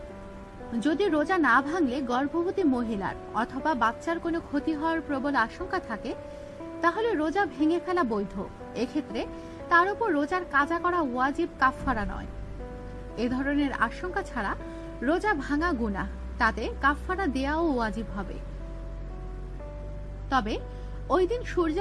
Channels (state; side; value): identical; both; correlation 1.00